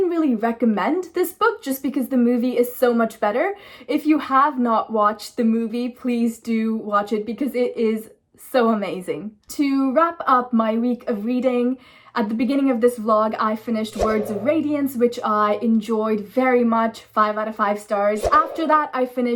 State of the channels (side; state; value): both; identical; correlation 1.00